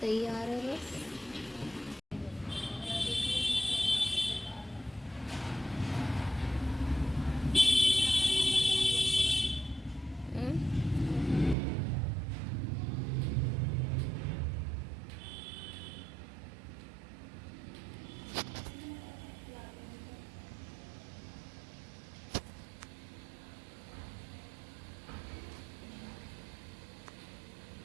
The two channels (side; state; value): left; drops out; at 11.6 s